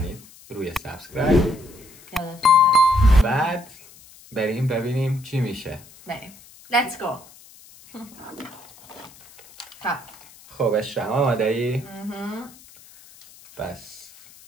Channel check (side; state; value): left; noise; hiss, 23 dB below the sound